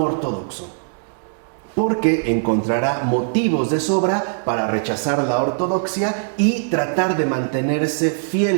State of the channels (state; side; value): silent; left; digital silence